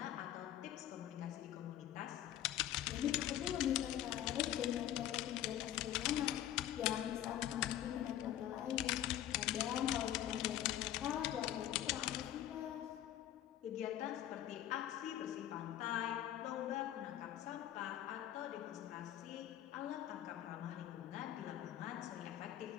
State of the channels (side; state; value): right; quieter; 12.1 dB